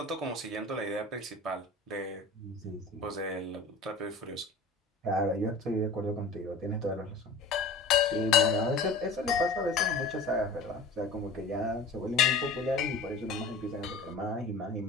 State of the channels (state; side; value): quieter; right; 3.6 dB